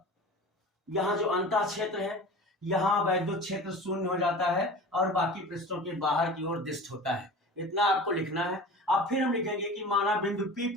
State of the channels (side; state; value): both; normal; correlation 0.37